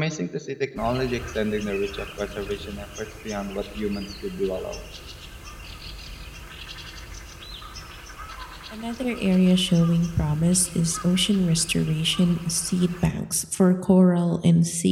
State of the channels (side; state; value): both; identical; correlation 1.00